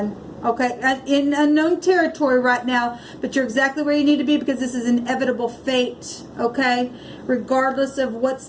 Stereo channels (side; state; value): both; identical; correlation 1.00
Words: Okay, in unknown territory right now, but you're exactly where you need to be because this is inevitable fate. Okay, regardless of what's